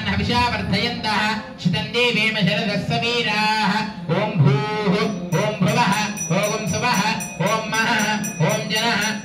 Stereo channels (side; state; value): both; identical; correlation 1.00